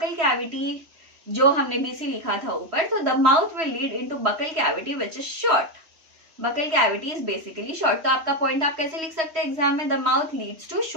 cavity जो हमने BC लिखा था ऊपर, तो the mouth will lead into buccal cavity which is short. Buccal cavity is basically short. तो आपका पॉइंट आप कैसे लिख सकते हैं एग्जाम में? The mouth leads to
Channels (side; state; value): left; late; 3.1 ms